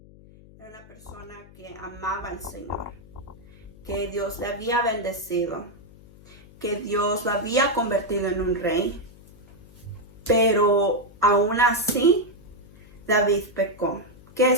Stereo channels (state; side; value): noise; left; hum, 23 dB below the sound